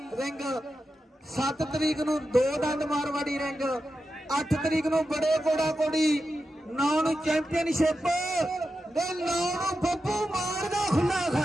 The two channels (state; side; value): normal; both; correlation 0.90